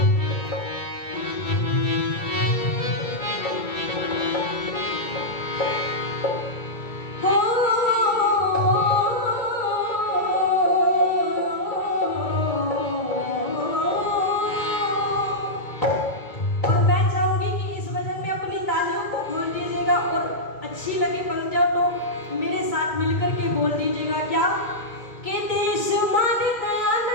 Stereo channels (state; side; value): late; right; 2.1 ms